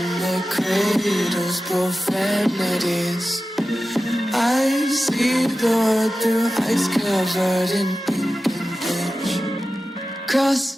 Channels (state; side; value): normal; both; correlation 0.94